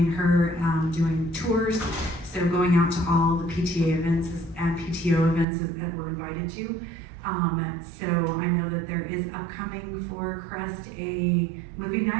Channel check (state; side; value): drops out; left; at 5.5 s